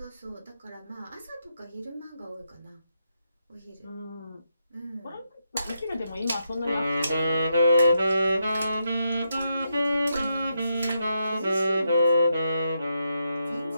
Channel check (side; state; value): both; inverted; correlation -0.82